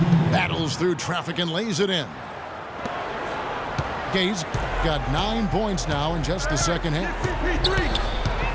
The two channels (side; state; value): both; identical; correlation 1.00